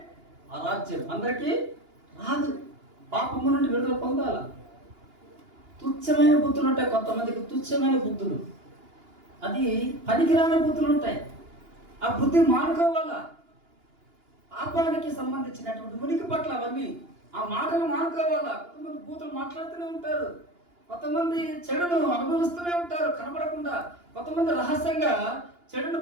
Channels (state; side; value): late; left; 2.9 ms